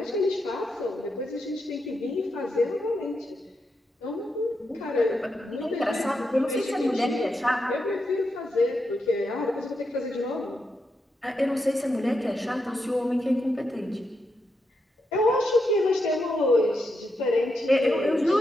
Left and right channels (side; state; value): both; normal; correlation 0.84